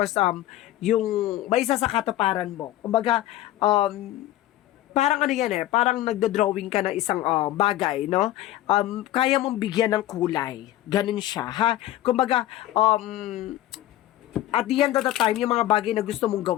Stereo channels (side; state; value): right; quieter; 14.2 dB